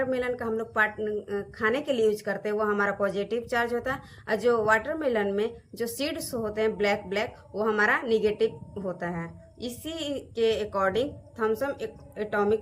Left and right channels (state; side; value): identical; both; correlation 1.00